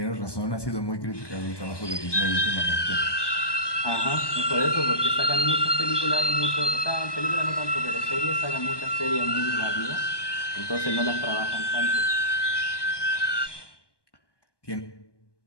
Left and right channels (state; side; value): late; right; 1.2 ms